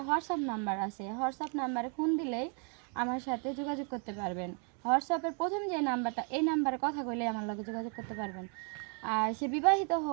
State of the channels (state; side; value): quieter; left; 39.2 dB